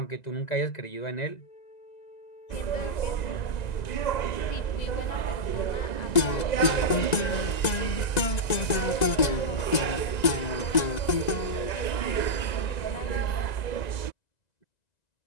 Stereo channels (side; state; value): right; late; 1.9 ms